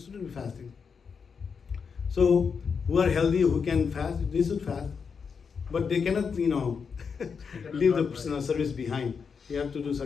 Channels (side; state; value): right; quieter; 6.0 dB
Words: be fasting. So who are healthy, who can fast, they should fast, but they cannot, leave the service behind. You have to do